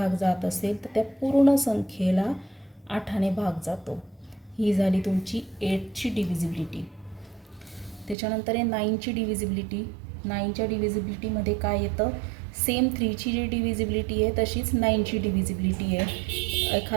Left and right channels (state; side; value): drops out; left; at 8.2 s